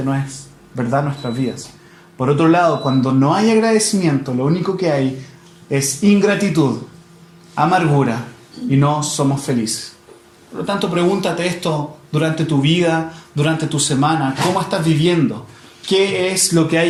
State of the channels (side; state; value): both; identical; correlation 1.00